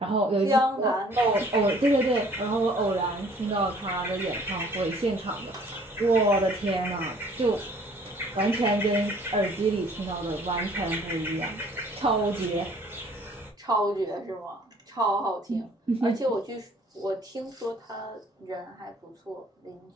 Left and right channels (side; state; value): both; normal; correlation 0.56